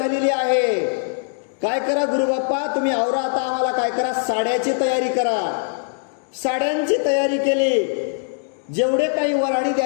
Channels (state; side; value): silent; right; digital silence